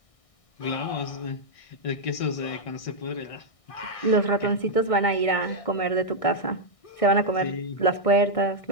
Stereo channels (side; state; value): right; late; 1.6 ms